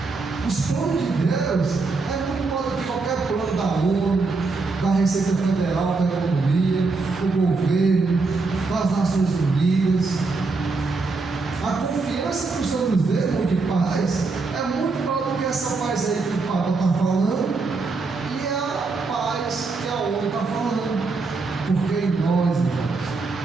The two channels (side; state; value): left; quieter; 3.9 dB